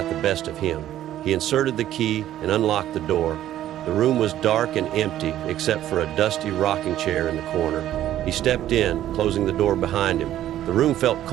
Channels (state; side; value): quieter; left; 12.5 dB